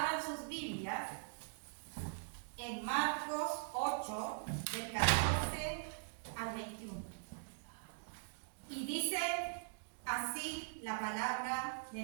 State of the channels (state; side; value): silent; left; digital silence